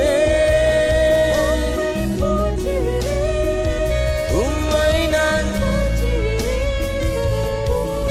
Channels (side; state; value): both; identical; correlation 1.00